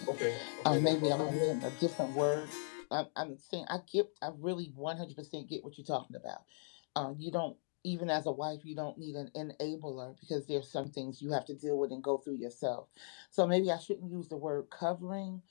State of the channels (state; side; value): silent; right; digital silence